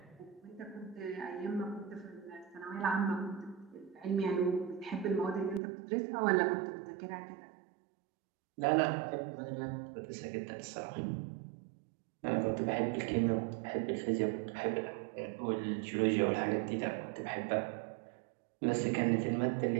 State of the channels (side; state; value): left; drops out; at 5.6 s